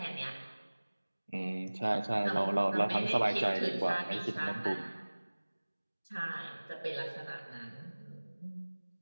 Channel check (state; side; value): inverted; both; correlation -1.00